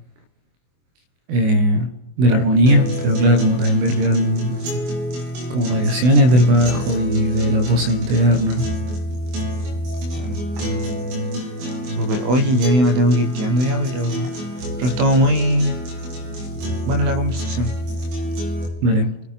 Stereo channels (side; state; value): left; late; 24 ms